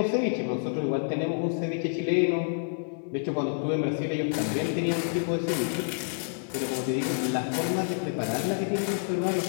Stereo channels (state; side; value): silent; right; 56 dB below the other